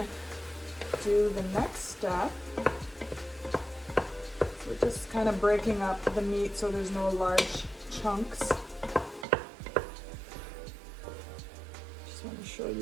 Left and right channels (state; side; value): drops out; left; at 9.2 s